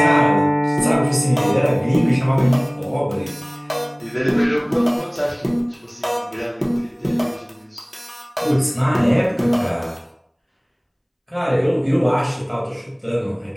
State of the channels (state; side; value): identical; both; correlation 1.00